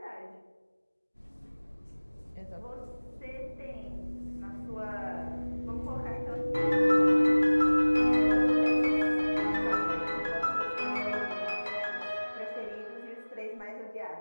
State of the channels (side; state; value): both; inverted; correlation -1.00